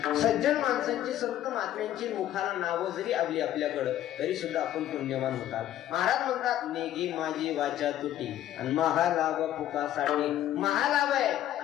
सज्जन माणसांची, संत महात्म्यांची मुखाला नावं जरी आली आपल्याकडं तरी सुद्धा आपण पुण्यवान होतात. महाराज म्हणतात नेगी माझी वाचा तुटी आणि महालाभ फुकासाठी. महालाभ आहे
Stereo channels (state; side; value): quieter; right; 12.4 dB